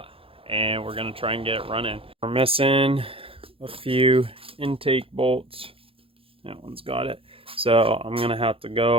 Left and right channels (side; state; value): left; late; 0.27 ms